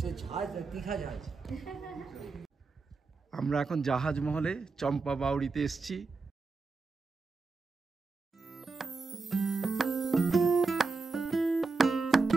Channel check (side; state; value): left; quieter; 4.1 dB